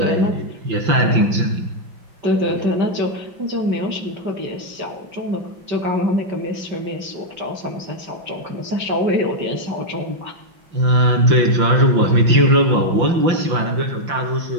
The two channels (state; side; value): late; left; 5.8 ms